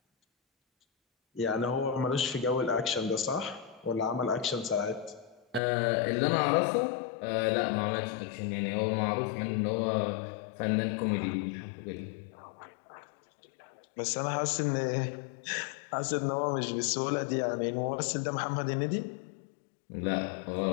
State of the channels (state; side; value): drops out; right; at 5.6 s